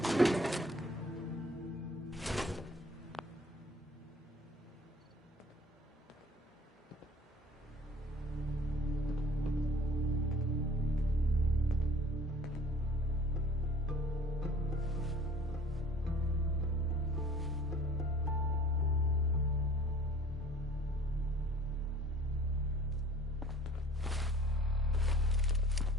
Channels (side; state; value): both; normal; correlation 0.49